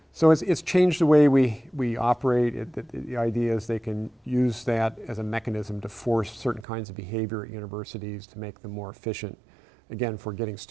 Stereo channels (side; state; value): left; drops out; at 6.7 s